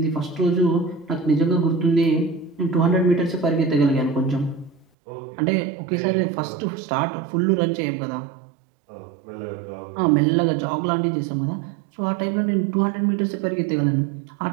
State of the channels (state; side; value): drops out; left; at 4.9 s